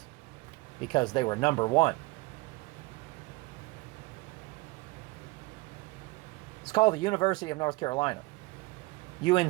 because they were number one. It's called the University of North Carolina,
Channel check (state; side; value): quieter; left; 23.1 dB